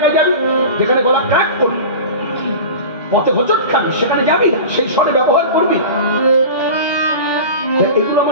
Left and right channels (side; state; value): both; inverted; correlation -0.32